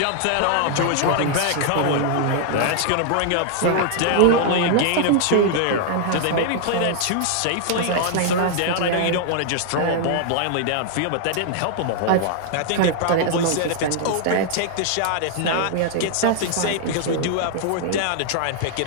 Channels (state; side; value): different; both; correlation 0.00